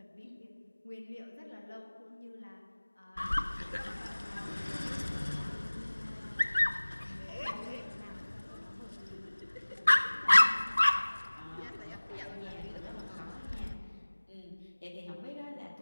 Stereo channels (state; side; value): inverted; both; correlation -1.00